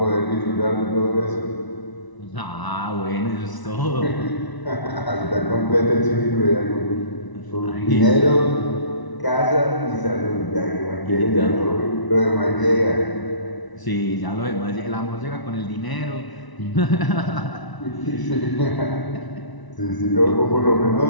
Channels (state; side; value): late; right; 1.0 ms